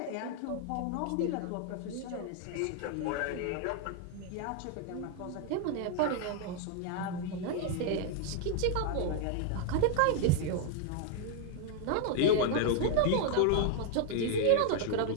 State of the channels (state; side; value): different; both; correlation 0.00